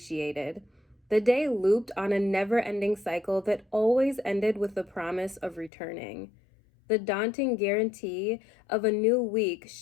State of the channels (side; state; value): right; drops out; at 5.7 s